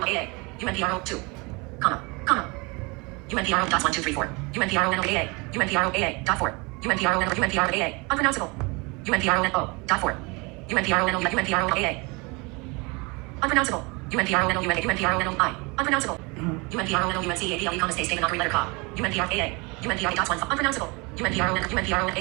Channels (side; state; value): left; quieter; 27.7 dB